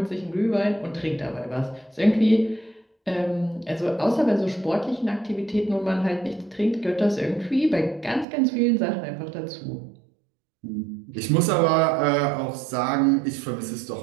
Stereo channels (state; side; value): drops out; left; at 8.2 s